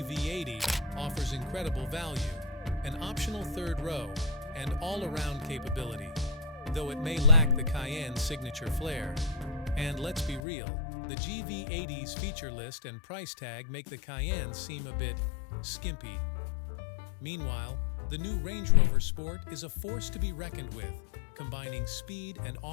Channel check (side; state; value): right; drops out; at 10.4 s